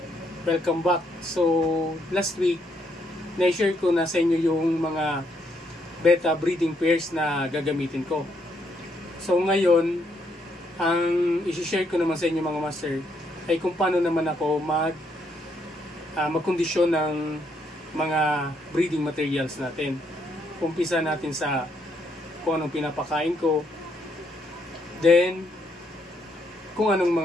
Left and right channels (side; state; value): both; normal; correlation 0.74